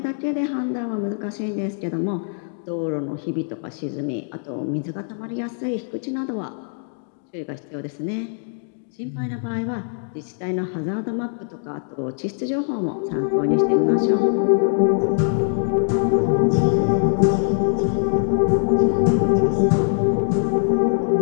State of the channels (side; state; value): right; silent; digital silence